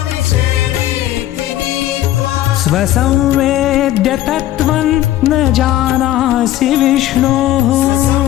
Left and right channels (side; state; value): right; quieter; 13.6 dB